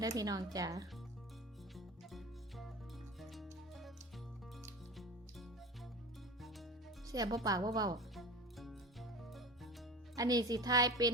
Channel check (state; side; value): normal; both; correlation 0.32